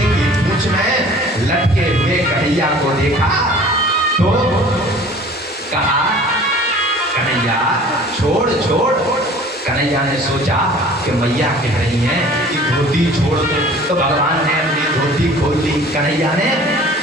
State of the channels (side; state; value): both; normal; correlation 0.47